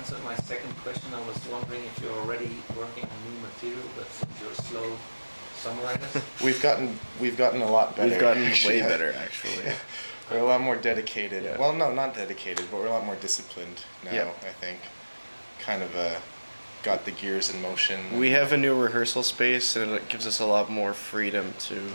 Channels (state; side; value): inverted; both; correlation -1.00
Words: my second question. I was wondering if you're already working on new material, but since you're slow songwriters. We've gotten a lot better. We've gotten way better, actually. Yeah. We're a lot more dedicated. Yeah. Well, no, not dedicated, but we're a lot more disciplined now, Yeah. I think. Kind of got the gears in motion. We have a new rehearsal space, and it gives us a lot more freedom